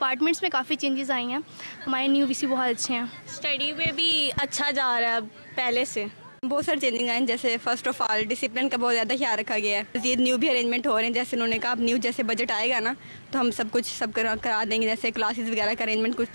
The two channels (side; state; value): both; inverted; correlation -1.00